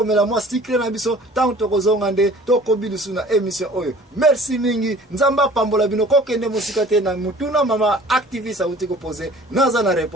mwa secret na biso tangu tokozonga nde tokobilisu na émission oyo. Merci mingi nzamba pambola bino kokende musika te na mutuna mama activiste auti ko poser naza na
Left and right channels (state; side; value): normal; both; correlation 0.49